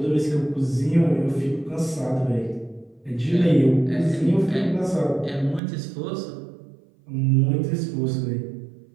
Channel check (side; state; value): left; drops out; at 5.6 s